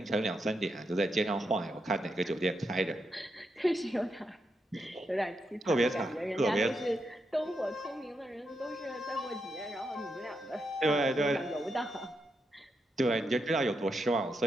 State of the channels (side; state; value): both; normal; correlation 0.83